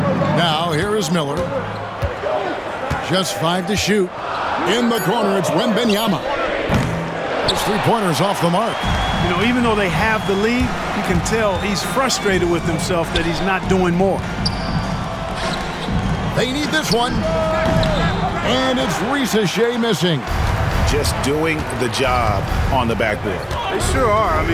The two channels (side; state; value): both; identical; correlation 1.00